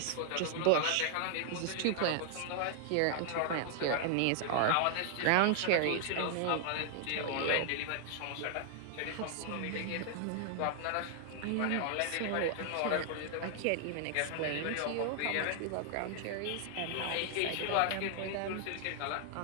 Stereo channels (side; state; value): both; different; correlation 0.00